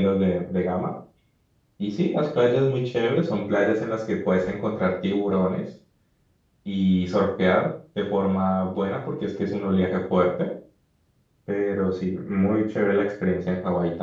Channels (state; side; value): identical; both; correlation 1.00